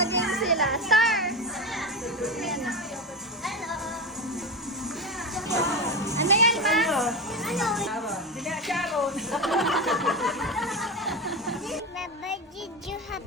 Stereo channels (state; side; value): normal; both; correlation 0.19